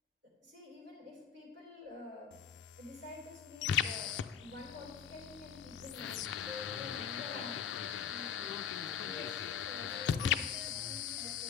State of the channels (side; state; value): right; quieter; 8.1 dB